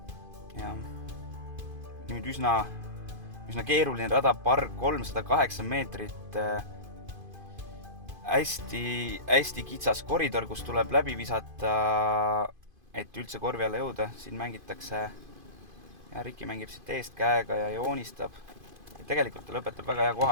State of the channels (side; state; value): left; late; 2.5 ms